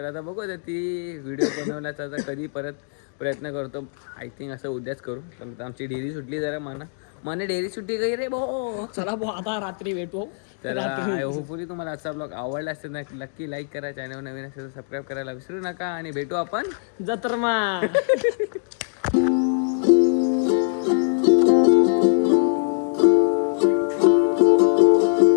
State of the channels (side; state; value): right; silent; digital silence